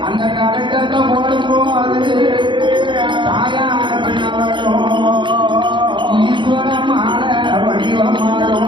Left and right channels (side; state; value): left; late; 0.23 ms